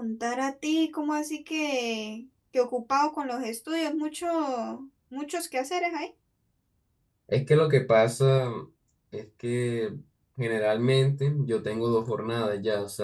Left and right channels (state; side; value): identical; both; correlation 1.00